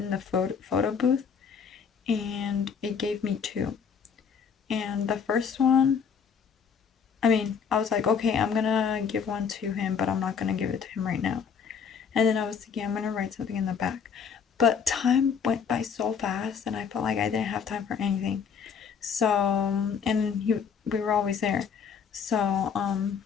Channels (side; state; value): right; quieter; 6.7 dB